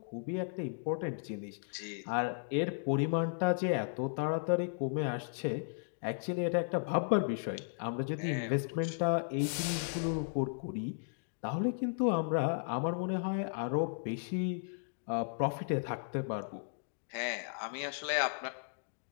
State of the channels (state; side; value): silent; right; digital silence